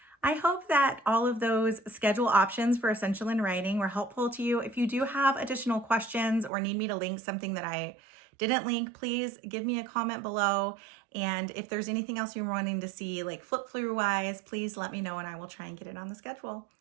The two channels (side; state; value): left; drops out; at 6.5 s